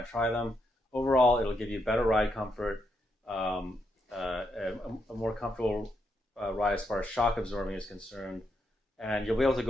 to try them. Overall, it'll give you better ride comfort, a more comfortable ride as far as shock absorbing is concerned. And you'll be able to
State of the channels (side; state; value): both; normal; correlation 0.80